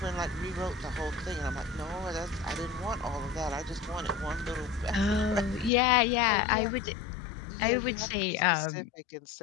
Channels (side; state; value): right; drops out; at 5.7 s